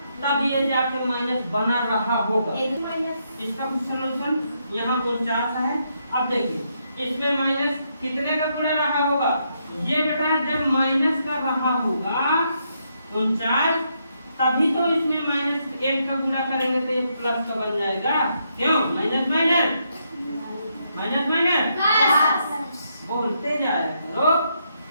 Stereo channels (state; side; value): inverted; both; correlation -0.78